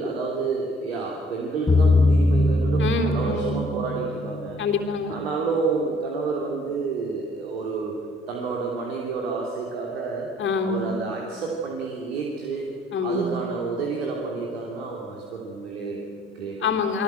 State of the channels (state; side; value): normal; both; correlation 0.60